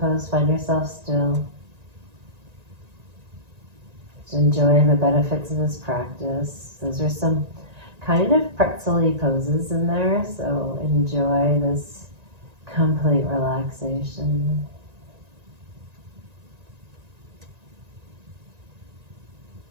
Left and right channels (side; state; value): left; late; 1.9 ms